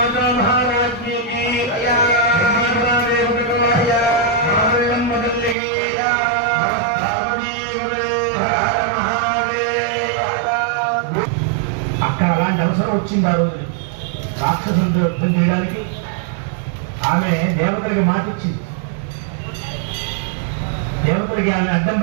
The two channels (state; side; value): drops out; left; at 5.6 s